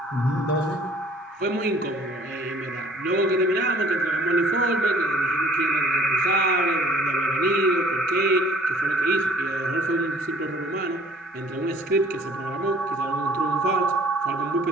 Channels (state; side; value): normal; both; correlation 0.55